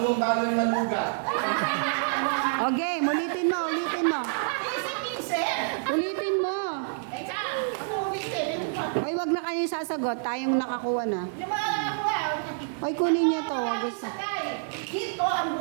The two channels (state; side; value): silent; left; digital silence